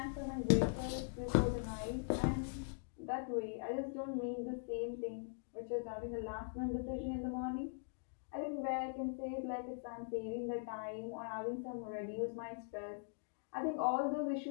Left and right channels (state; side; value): silent; right; digital silence